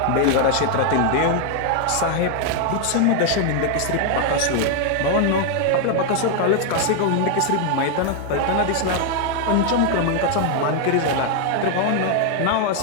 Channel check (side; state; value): both; different; correlation 0.00